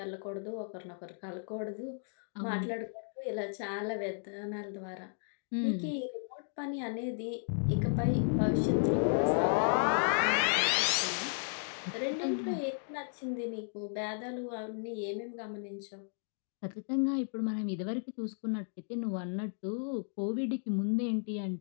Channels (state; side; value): silent; right; digital silence